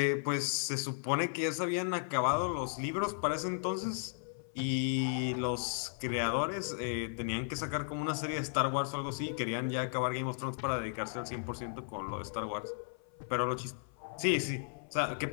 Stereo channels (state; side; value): silent; right; 54 dB below the other